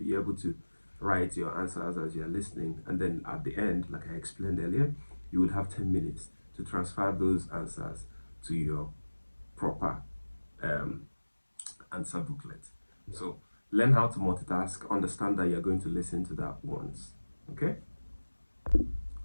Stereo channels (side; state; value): both; inverted; correlation -1.00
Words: able to write your answers as you're listening, and then at the end, like I explained earlier, you would have 10 minutes to transfer those answers to your proper answer booklet. So learn how to multitask, understand that you're going to listen to that once. Okay,